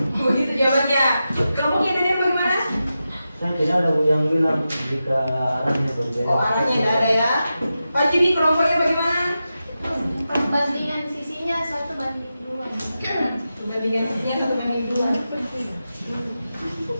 jawabannya. Kelompoknya dari bagaimana? Saya tidak ada yang bilang jika arahnya berbeda. Oh, arahnya tidak ada ya. Pak Juni, kelompoknya bagaimana? Perbandingan sisinya 1:2. Perbandingan sisinya 1:2.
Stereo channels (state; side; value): inverted; both; correlation -0.91